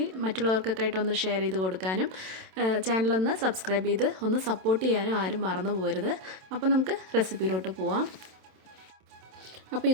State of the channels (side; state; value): left; late; 27 ms